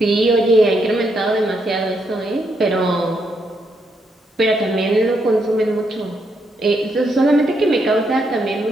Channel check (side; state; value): both; normal; correlation 0.78